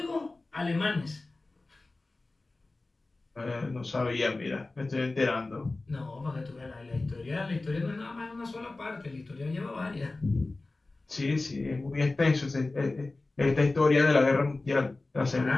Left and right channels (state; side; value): quieter; right; 3.2 dB